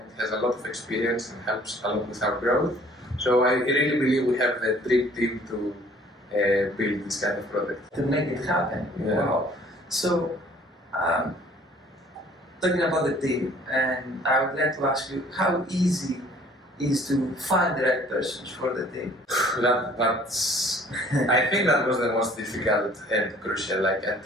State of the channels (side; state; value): both; normal; correlation 0.55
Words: has a lot of experience and helps a lot with our growth. So I really believe we have the dream team to build this kind of product. To make it happen. Yeah. Wow. So, talking about the team, and I would like to ask you, how easy is to find the right persons for the team? I think that was the most difficult and crucial. Like